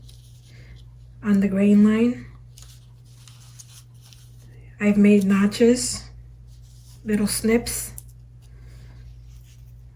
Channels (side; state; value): both; identical; correlation 1.00